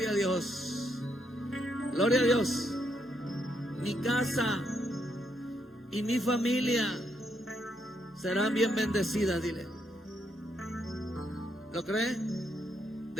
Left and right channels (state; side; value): normal; both; correlation 0.77